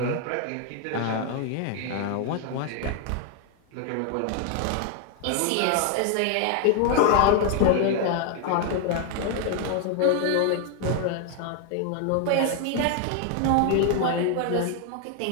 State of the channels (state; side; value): different; both; correlation 0.00